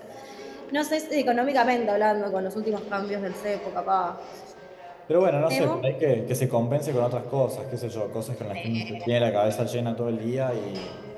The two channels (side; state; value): both; identical; correlation 1.00